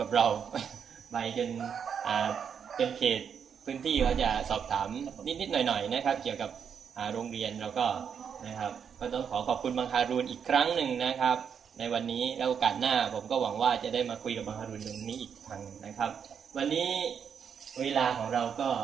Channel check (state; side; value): quieter; left; 7.3 dB